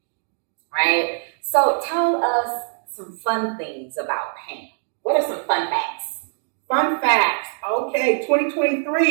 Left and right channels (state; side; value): silent; left; 64 dB below the other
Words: right? So tell us some fun things about Pam. What are some fun facts? Fun facts. Okay,